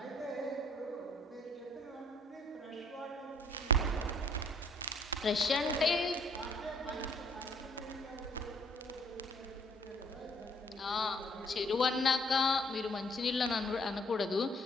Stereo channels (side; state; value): both; normal; correlation 0.61